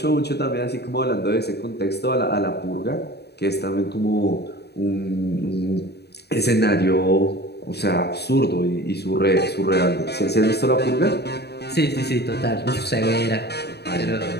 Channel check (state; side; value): late; right; 0.48 ms